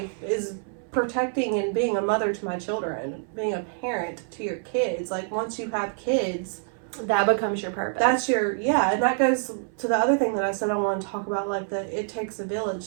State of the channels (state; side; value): silent; left; 61 dB below the other